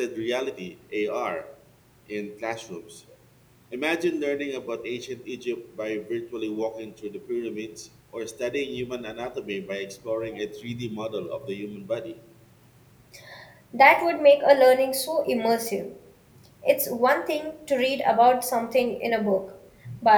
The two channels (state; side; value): identical; both; correlation 1.00